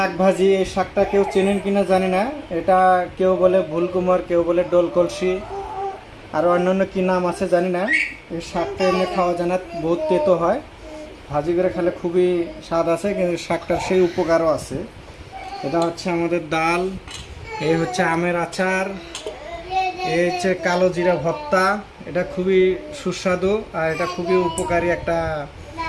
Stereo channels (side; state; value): both; identical; correlation 1.00